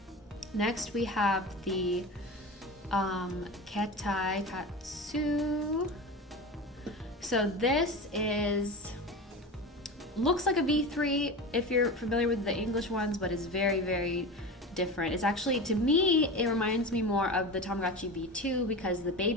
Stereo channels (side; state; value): both; normal; correlation 0.28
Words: Next we have the Ketai Katsu. So this looks like a V3 if you're familiar with the English ones, but it's very, very different. It's actually, to me, it reminds me more of the Tamagotchi V2 because the